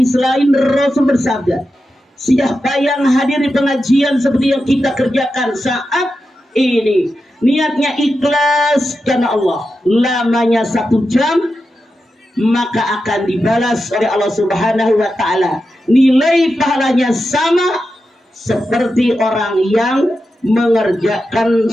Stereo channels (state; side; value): normal; both; correlation 0.90